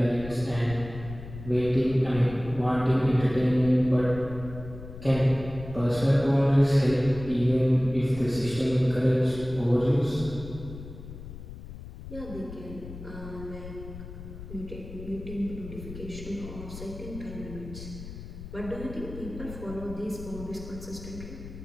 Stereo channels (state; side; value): noise; left; rumble, 12 dB below the sound